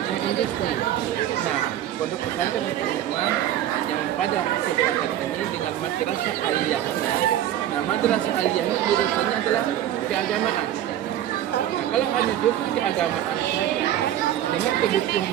industri. Nah, pondok pesantren Al-Hikmah yang pada kesempatan ini dengan madrasah aliyahnya. Nah, madrasah aliyah ini jurusannya adalah keagamaan. Nah, kalau hanya jurusan keagamaan saja dengan kebutuhan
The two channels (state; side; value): quieter; left; 11.9 dB